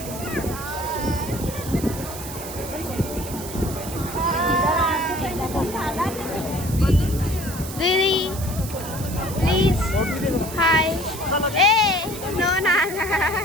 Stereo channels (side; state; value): right; noise; hiss, 11 dB below the sound